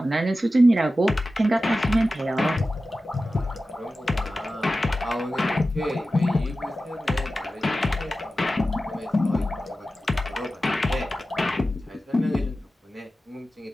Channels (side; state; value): both; normal; correlation 0.94